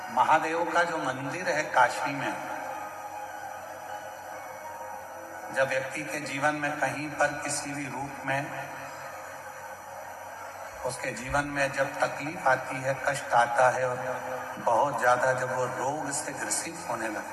महादेव का जो मंदिर है काशी में, जब व्यक्ति के जीवन में कहीं पर किसी भी रूप में उसके जीवन में जब तकलीफ आती है, कष्ट आता है और बहुत ज्यादा जब वो रोग से ग्रसित होने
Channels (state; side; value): identical; both; correlation 1.00